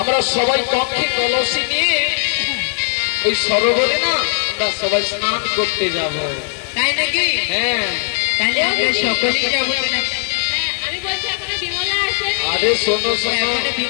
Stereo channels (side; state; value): right; silent; digital silence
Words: সবাই কক্ষে কলসি নিয়ে ওই সরোবরে না আমরা সবাই স্নান করতে যাব। তাই নাকি? হ্যাঁ, তাহলে আমরা সকলেই যাব। আমি বলছি এখনো বিমলা আসেনি। আরে শোনো শোনো, এখনো